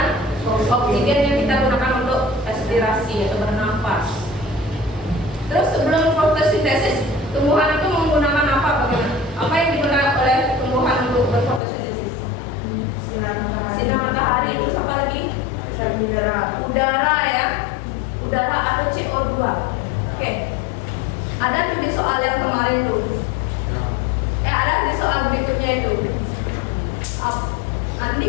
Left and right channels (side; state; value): right; drops out; at 11.6 s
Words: oksigen yang kita gunakan untuk respirasi atau bernafas. Terus sebelum fotosintesis, tumbuhan itu menggunakan apa? Bagaimana? Apa yang digunakan oleh tumbuhan untuk berfotosintesis? Sinar matahari. Terus apa lagi? Udara ya. Udara atau CO2. Oke. Ada tuh di soal yang kemarin tuh. Ada di soal berikutnya itu. Nanti